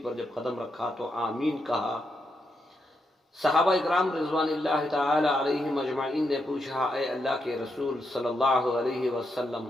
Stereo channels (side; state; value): both; normal; correlation 0.82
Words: پر جب قدم رکھا تو آمین کہا۔ صحابہ اکرام رضوان اللہ تعالی علیہم اجمعین نے پوچھا، اے اللہ کے رسول صلی اللہ علیہ وسلم،